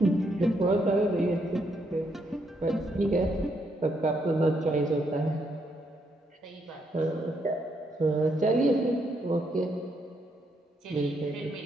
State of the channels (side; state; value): both; normal; correlation 0.76